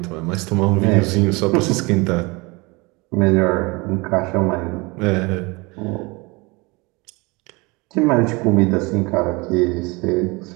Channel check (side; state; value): left; quieter; 26.0 dB